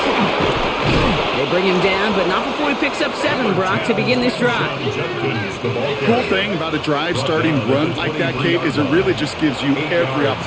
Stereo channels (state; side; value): identical; both; correlation 1.00